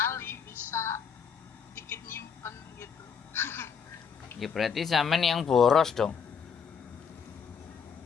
bisa dikit nyimpen gitu. Ya berarti sampean yang boros dong.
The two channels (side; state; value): right; quieter; 6.6 dB